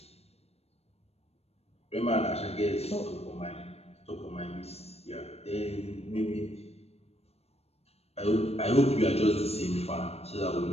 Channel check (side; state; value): right; late; 0.30 ms